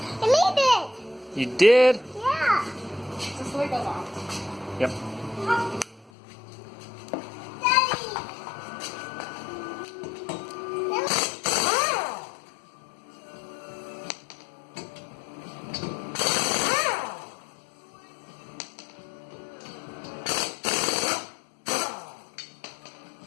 You need it. You did? Yeah. Just the way it goes off. Yep. Daddy.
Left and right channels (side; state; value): right; drops out; at 6.1 s